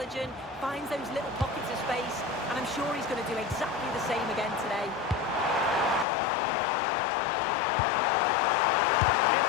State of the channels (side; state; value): right; drops out; at 6.1 s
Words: finds those little pockets of space, and I'm sure he's going to do exactly the same again today. Is